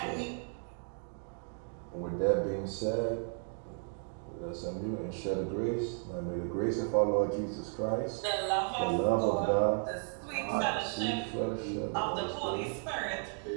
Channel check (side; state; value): left; silent; 55 dB below the other